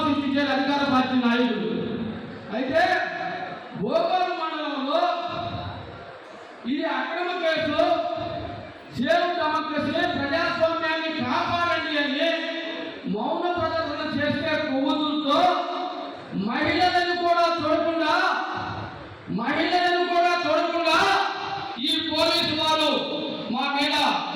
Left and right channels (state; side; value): identical; both; correlation 1.00